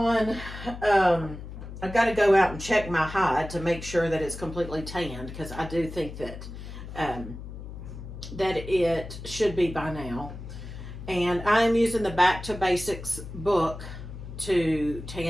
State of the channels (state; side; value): noise; left; hum, 11 dB below the sound